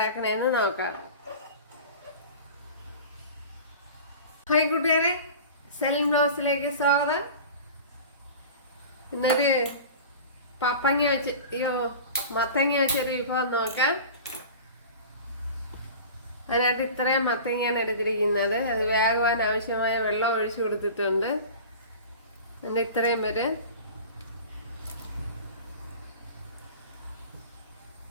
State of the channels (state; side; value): inverted; both; correlation -0.37